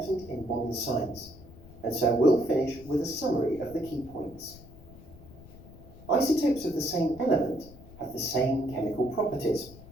in modern science, and so we'll finish with a summary of the key points. Isotopes of the same element have the same chemical properties.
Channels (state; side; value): noise; left; rumble, 19 dB below the sound